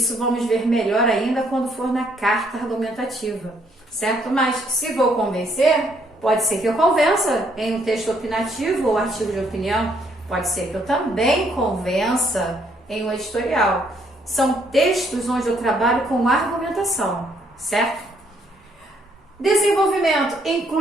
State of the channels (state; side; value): normal; both; correlation 0.69